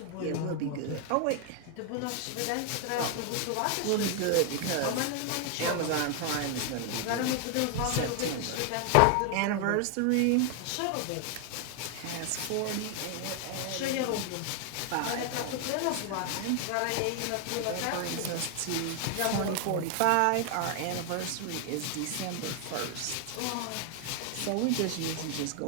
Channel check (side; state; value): both; different; correlation 0.00